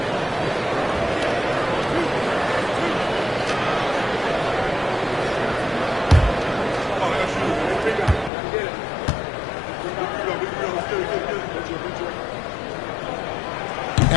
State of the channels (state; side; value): drops out; right; at 8.3 s